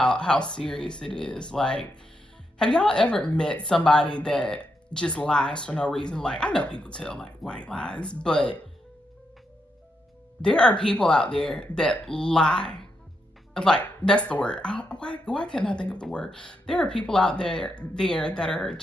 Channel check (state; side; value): normal; both; correlation 0.82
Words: serious it is. Like, have y'all ever met somebody that just lies for no reason? Like, I know people tell like white lies, but there are people out there that lie. Like, that's the word. Why can't I think of the word? There are people out there that are